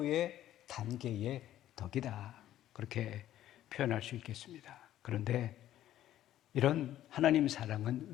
단계의 덕이다 그렇게 표현할 수 있겠습니다. 그런데 이런 하나님 사랑은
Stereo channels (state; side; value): quieter; right; 12.7 dB